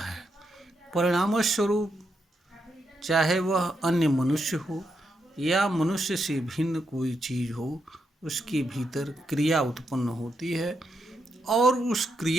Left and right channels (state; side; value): normal; both; correlation 0.82